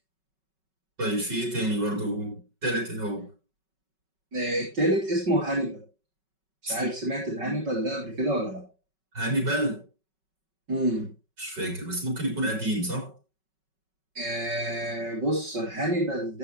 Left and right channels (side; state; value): left; late; 5.3 ms